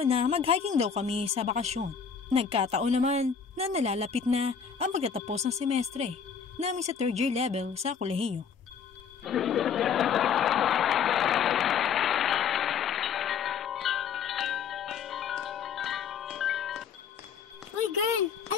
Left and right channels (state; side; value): quieter; right; 6.7 dB